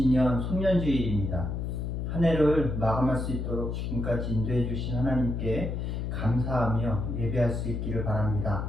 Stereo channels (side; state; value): left; noise; hum, 3 dB below the sound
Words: 송년주일입니다. 한 해를 마감할 수 있도록 지금까지 인도해 주신 하나님께 감사하며 예배할 수 있기를 바랍니다.